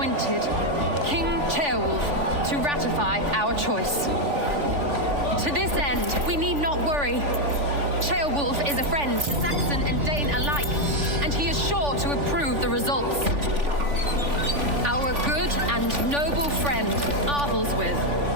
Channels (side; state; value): left; late; 3.5 ms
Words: King Ceolwulf to ratify our choice. To this end, we need not worry. Ceolwulf is a friend to Saxon and Dane alike, and he is sure to approve the results. Our good and noble friend, Arthelswith.